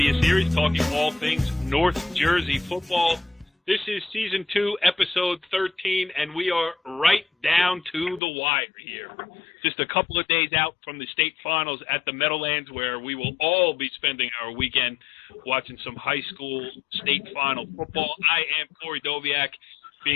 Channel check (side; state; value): right; drops out; at 8.2 s